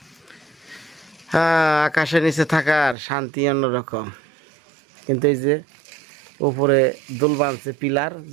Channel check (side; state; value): left; drops out; at 3.0 s